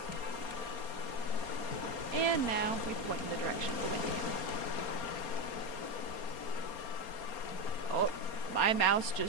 And now we point in the direction of the wind again. Oh, my mouse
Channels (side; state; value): right; late; 4.3 ms